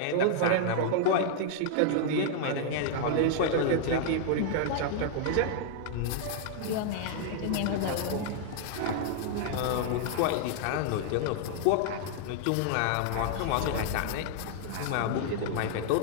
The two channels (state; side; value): different; both; correlation -0.01